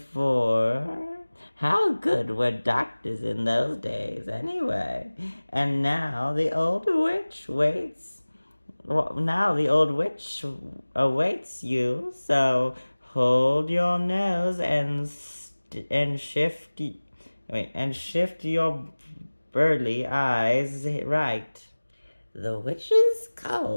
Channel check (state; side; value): inverted; both; correlation -1.00